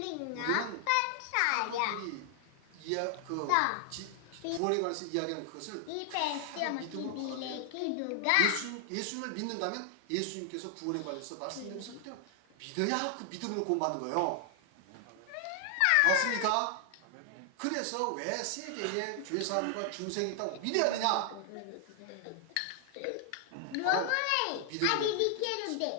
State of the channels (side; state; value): both; different; correlation 0.00